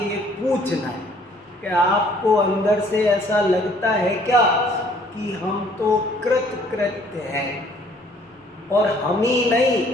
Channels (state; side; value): normal; both; correlation 0.59